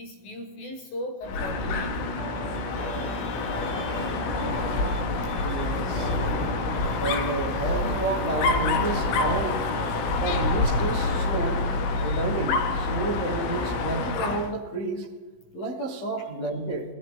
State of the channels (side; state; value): right; late; 16 ms